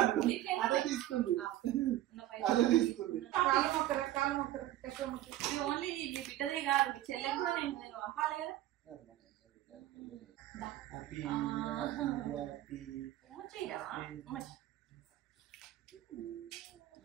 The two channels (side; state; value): left; quieter; 14.3 dB